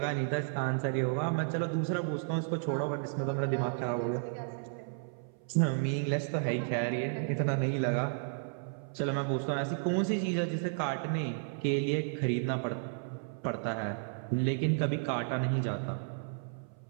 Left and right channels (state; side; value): silent; left; 55 dB below the other